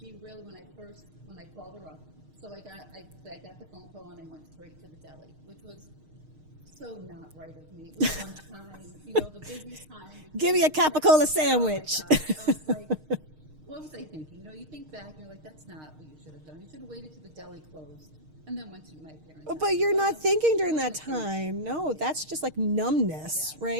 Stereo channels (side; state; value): left; late; 6.5 ms